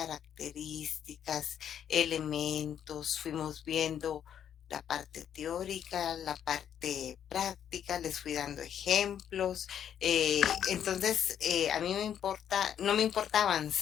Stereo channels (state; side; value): quieter; right; 9.2 dB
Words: elementos, fuimos viendo la parte teórica, la parte práctica, les fui dando ejemplos. Entonces, a mí no me importa